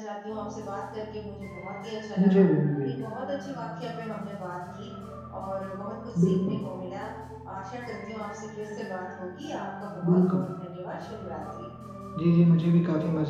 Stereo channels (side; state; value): both; identical; correlation 1.00